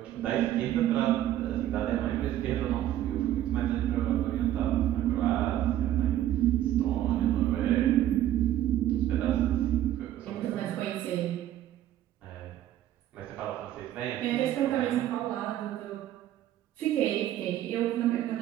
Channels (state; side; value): quieter; left; 12.6 dB